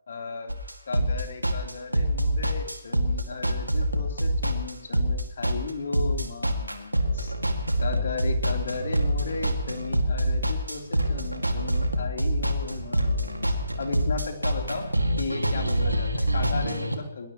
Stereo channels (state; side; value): inverted; both; correlation -0.79